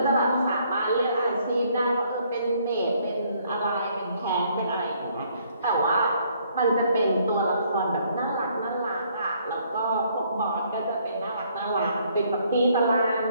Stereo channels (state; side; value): inverted; both; correlation -0.66